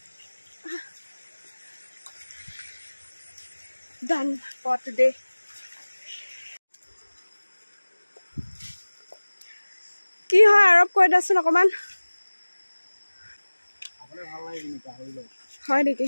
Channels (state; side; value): inverted; both; correlation -1.00